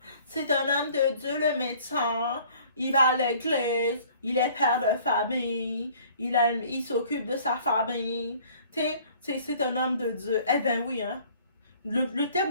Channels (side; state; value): both; inverted; correlation -0.54